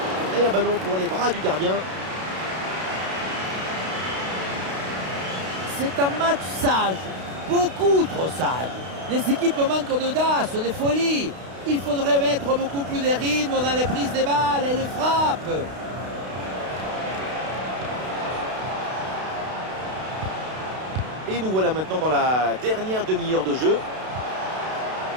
Et un ballon pour les bras du gardien. C'est un match sage, beaucoup trop sage. Les équipes manquent d'audace, de folie. Il faudrait mettre beaucoup plus de rythme dans les prises des balles et les frappes. Et nous voilà maintenant dans la dernière demi-heure de jeu.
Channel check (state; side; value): late; left; 32 ms